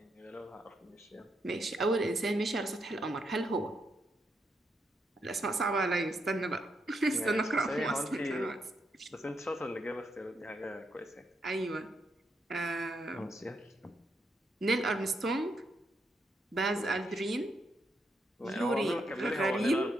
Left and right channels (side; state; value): both; normal; correlation 0.80